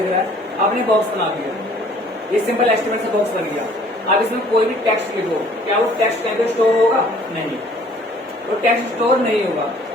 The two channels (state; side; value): normal; both; correlation 0.56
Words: रहा है, आपने बॉक्स बना दिया, ये सिंपल एस्टिमेट से बॉक्स बन गया। अब इसमें कोई भी टेक्स्ट लिखो, क्या वो टेक्स्ट कहीं पे स्टोर होगा? नहीं, वो टेक्स्ट स्टोर नहीं होगा।